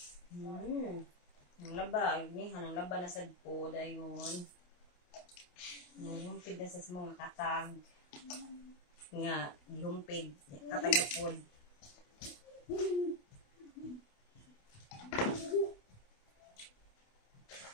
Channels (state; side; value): late; right; 28 ms